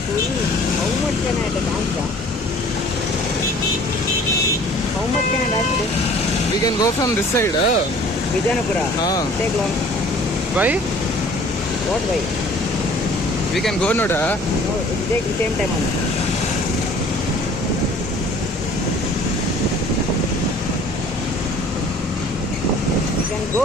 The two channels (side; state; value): both; normal; correlation 0.51